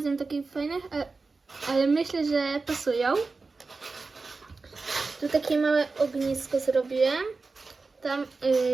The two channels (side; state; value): left; quieter; 4.0 dB